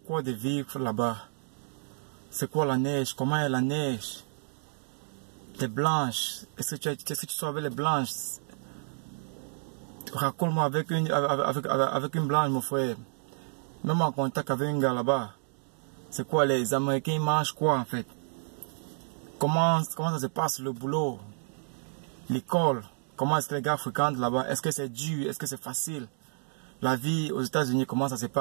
quoi de vivre là-bas? C'est quoi la neige? Comment est la neige? Les blanches, est-ce que tu savais les blanches? Raconte-moi avec une blanche, mon frère. Même en contact avec un gars là-bas. C'est quoi, les Américains ils mangent quoi en fait? Comment ça se passe le boulot? L'école? Comment est-ce que les gars fréquentent là-bas? Est-ce que c'est dur? Est-ce que c'est facile? La vie aux États-Unis, comment ça se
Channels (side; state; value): left; silent; digital silence